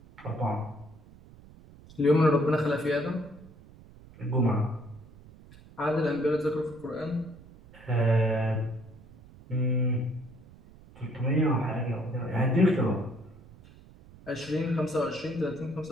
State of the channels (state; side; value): noise; right; rumble, 22 dB below the sound